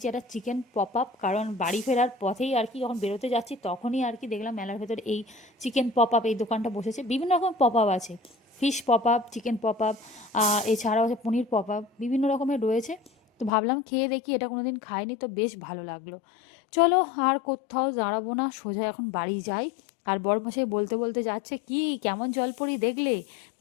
একটা চিকেন পপ আপ, কারণ বাড়ি ফেরার পথেই আর কি যখন বেরোতে যাচ্ছি তখনই আর কি দেখলাম মেলার ভেতরে এই চিকেন পপ আপ এই দোকানটা বসেছে। বিভিন্ন রকম পপ আপ আছে, fish pop up, chicken pop up, এছাড়াও আছে পনির পপ আপ, বিভিন্ন রকমের রয়েছে। তো ভাবলাম খেয়ে দেখি, এটা কোনো দিন খাইনি, তো বেশ ভালো লাগলো। চলো আর কোথাও দাঁড়াবো না, সোজা এখন বাড়ি যাই। আর বড়মশাই বলতে বলতে যাচ্ছে, কি কেমন জলপরি দেখলে,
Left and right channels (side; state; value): right; drops out; at 13.5 s